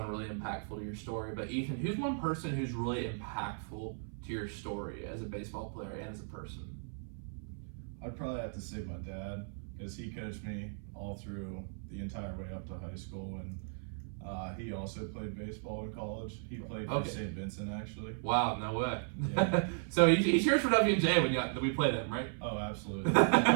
really impactful to your story. But Ethan, who's one person who's really impactful to your story as a baseball player and as a person? I'd probably have to say my dad, because he coached me all through the entire way up to high school, and he also played baseball in college. He played for St. Vincent, actually. Wow, no way. Yeah. So he cheers for W&J when we play them, right? Oh, absolutely.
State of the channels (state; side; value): silent; left; 54 dB below the other